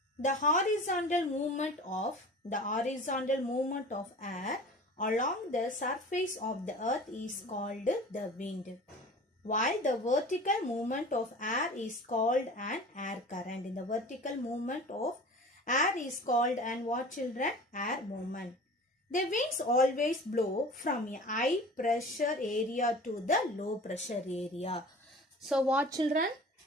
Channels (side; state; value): both; normal; correlation 0.40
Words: The horizontal movement of air along the surface of the earth is called the wind, while the vertical movement of air is called an air current. In the vertical movement of air is called an what, children? Air movement. The winds always blow from a high pressure area to the low pressure area. So what, children?